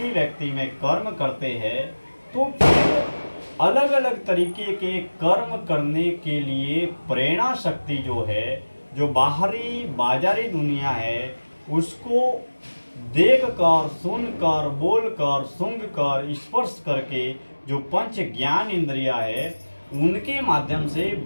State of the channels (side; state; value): both; inverted; correlation -1.00